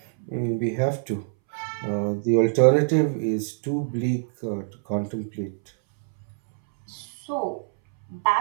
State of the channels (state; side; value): silent; left; 62 dB below the other